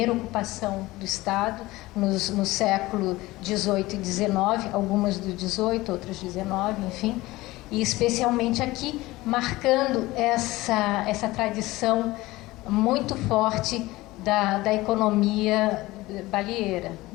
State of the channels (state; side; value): quieter; right; 19.2 dB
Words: ocupação do estado no século XVIII e XIX, algumas do XVIII, outras XIX, enfim, e especialmente aqui, marcando essa tradição muito forte da economia baleeira,